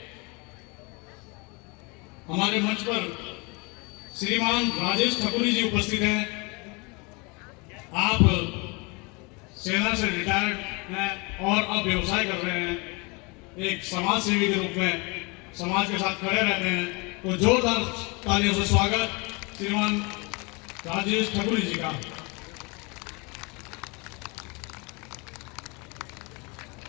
हमारे मंच पर श्रीमान राजेश ठाकुरी जी उपस्थित हैं। आप सेना से रिटायर्ड हैं और अब व्यवसाय कर रहे हैं। एक समाज सेवी के रूप में समाज के साथ खड़े रहते हैं। तो जोरदार तालियों से स्वागत श्रीमान राजेश ठाकुरी जी का।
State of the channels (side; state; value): right; quieter; 28.8 dB